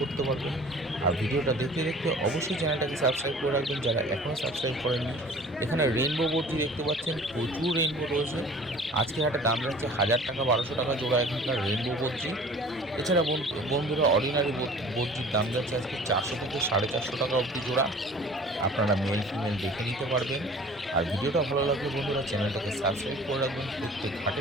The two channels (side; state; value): both; normal; correlation 0.47